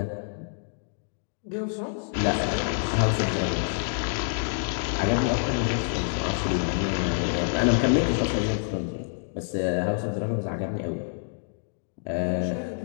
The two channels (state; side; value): silent; right; digital silence